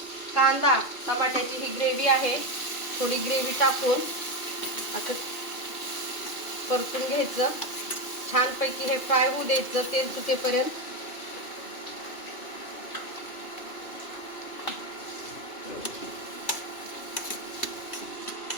कांदा, टमाट्याची ही ग्रेव्ही आहे, थोडी ग्रेव्ही टाकून असं परतून घ्यायचं. छानपैकी हे फ्राय होऊ द्यायचं तेल सुटेपर्यंत.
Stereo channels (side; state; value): right; late; 2.7 ms